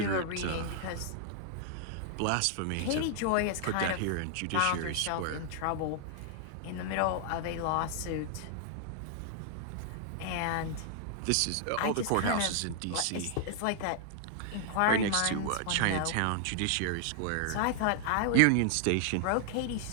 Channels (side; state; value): both; different; correlation 0.00